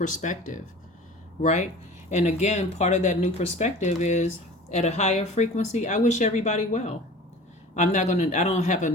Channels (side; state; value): both; normal; correlation 0.41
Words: right? And again, part of that new perspective is at a higher frequency. I wish everybody well. I don't have a